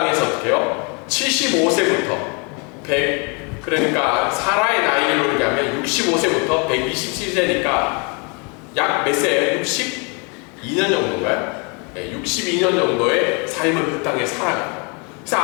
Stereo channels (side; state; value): right; quieter; 33.5 dB